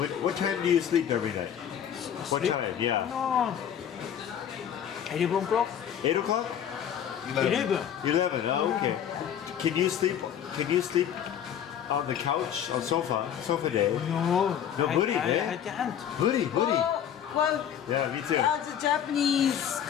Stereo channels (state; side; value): quieter; right; 9.3 dB